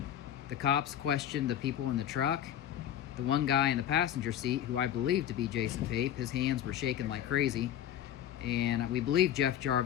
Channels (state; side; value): quieter; right; 10.6 dB